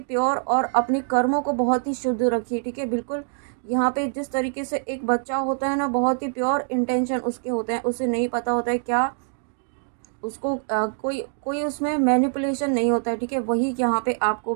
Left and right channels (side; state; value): left; silent; digital silence